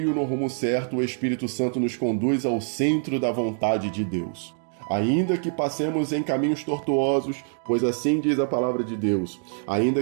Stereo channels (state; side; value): silent; left; 62 dB below the other